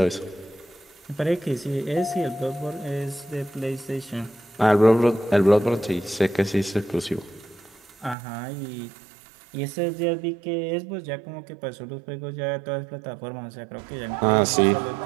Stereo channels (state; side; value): drops out; left; at 8.2 s